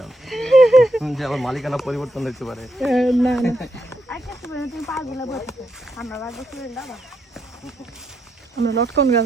যে আমার মালিকানা পরিবর্তন হতে পারে। না না, আমরা লটকন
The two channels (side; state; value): both; normal; correlation 0.80